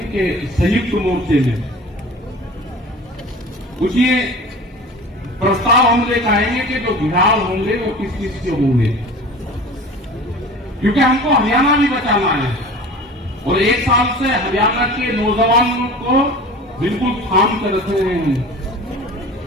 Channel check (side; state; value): both; normal; correlation 0.39